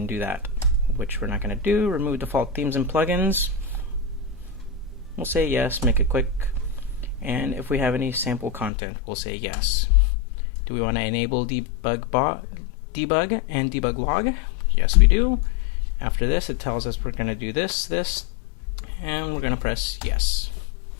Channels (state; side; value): drops out; right; at 8.7 s